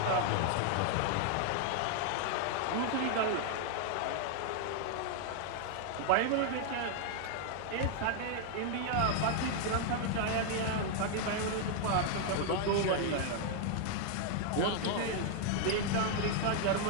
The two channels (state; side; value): different; both; correlation 0.00